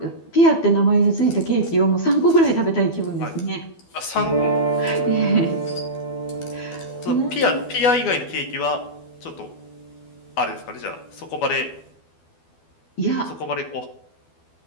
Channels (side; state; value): right; late; 12 ms